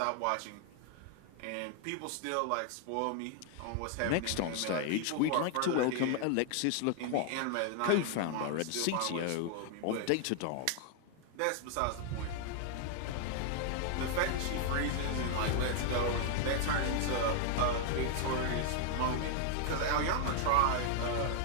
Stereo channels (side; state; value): both; different; correlation 0.00